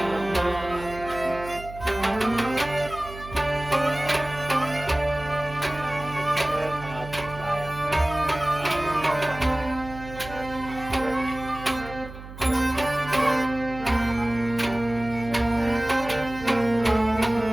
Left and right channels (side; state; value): right; noise; hum, 14 dB below the sound